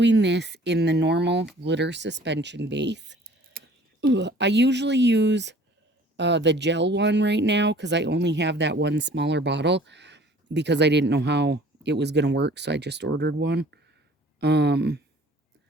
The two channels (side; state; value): both; normal; correlation 0.51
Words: this in the normal glitter suspension base. I usually use the gel one right now because I only have that one smaller bottle because I didn't know how it was going to work, so I just ordered one.